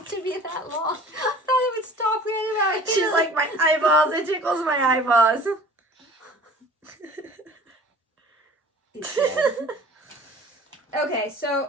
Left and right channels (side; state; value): both; normal; correlation 0.45